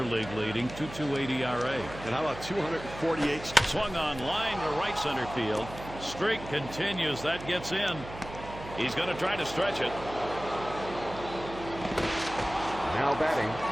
league leading 2.28 ERA. And how about 248? Swung on line to right center field. Streak continues. That gets in. He's going to try to stretch it. Now batting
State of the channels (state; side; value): noise; right; hum, 13 dB below the sound